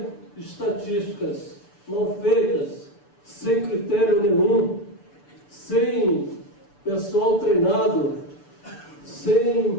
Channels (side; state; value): right; late; 6.9 ms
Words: estatísticas mal feitas, sem critério nenhum, sem pessoal treinado,